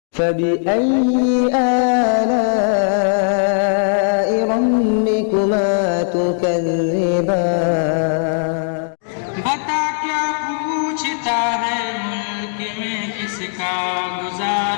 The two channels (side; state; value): right; silent; digital silence